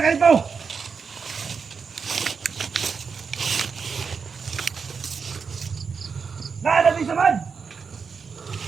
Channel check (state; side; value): quieter; left; 5.6 dB